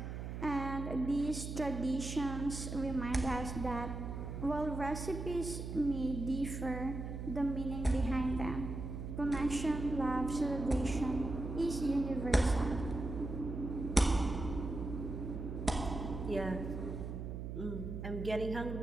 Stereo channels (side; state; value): right; noise; hum, 6 dB below the sound